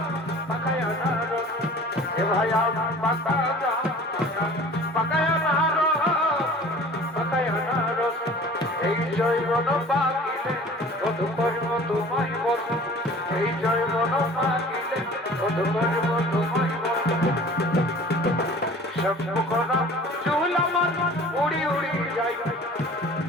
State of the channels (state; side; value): normal; both; correlation 0.45